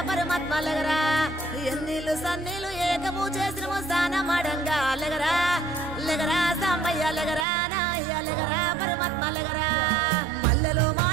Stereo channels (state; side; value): drops out; left; at 7.5 s